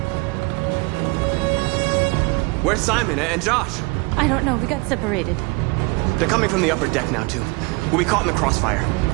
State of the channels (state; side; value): quieter; left; 26.4 dB